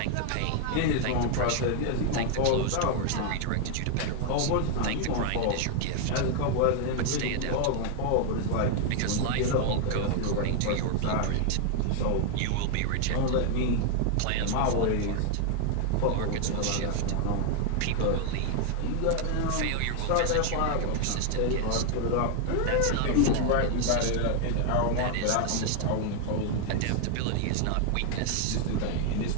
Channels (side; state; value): both; different; correlation 0.00